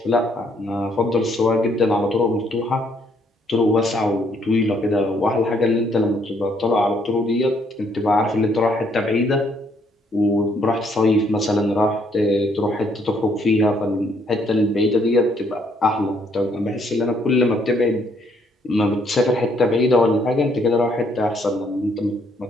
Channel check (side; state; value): both; normal; correlation 0.68